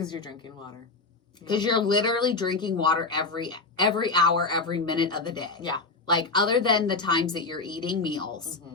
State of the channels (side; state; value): right; quieter; 3.8 dB